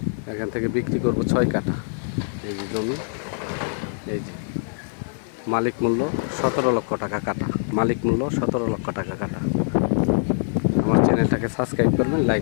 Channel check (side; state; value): right; silent; 56 dB below the other